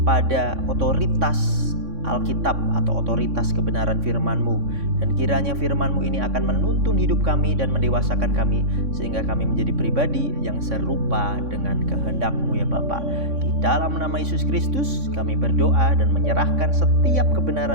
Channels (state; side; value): late; left; 3.6 ms